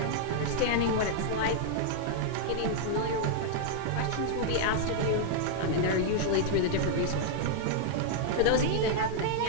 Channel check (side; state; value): both; different; correlation -0.01